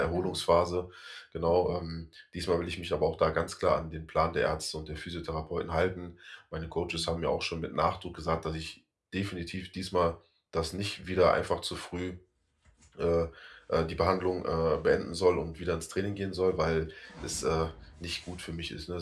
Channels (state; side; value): identical; both; correlation 1.00